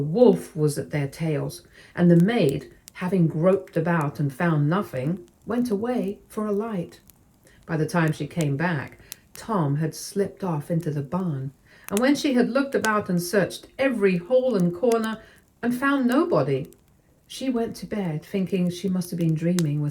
was at their tails, and the maid, having groped about and found nothing, went away for a light. By the time she came back, Tom had slipped off into the barn, and when she had looked about and searched every hole and corner and found nobody, she went to bed thinking she must have been dreaming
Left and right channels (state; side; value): identical; both; correlation 1.00